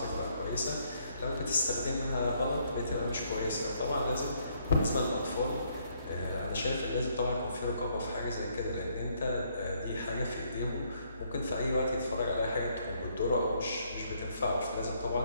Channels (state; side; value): inverted; both; correlation -0.70